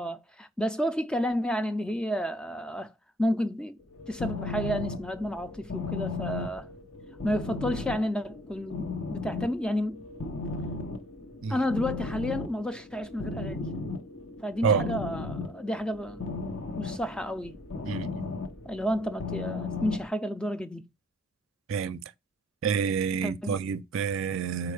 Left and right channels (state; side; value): normal; both; correlation 0.60